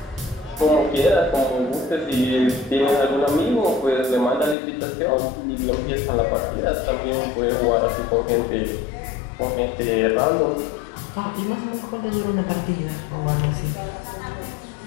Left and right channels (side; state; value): right; drops out; at 4.5 s